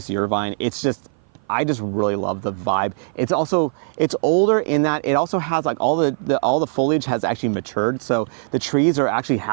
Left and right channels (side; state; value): left; silent; 57 dB below the other